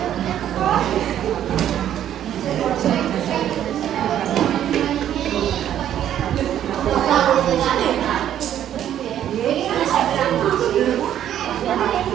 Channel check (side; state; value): left; quieter; 10.8 dB